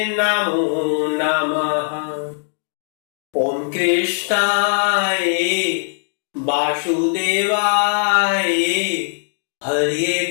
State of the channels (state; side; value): silent; right; digital silence